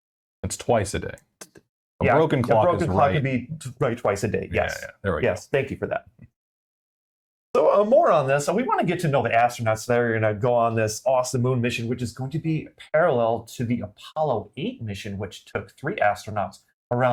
It's twice a day. A broken clock can be right twice a day. Yes. Yeah, there we go. Yes. Thank you for that. So more on this. So we want to get to know the astronauts that are going to go on this awesome moon mission, which is going to be parallel to the Apollo 8 mission, which took 3 astronauts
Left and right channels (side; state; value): both; identical; correlation 1.00